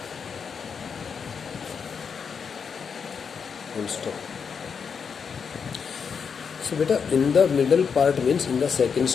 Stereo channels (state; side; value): quieter; right; 6.3 dB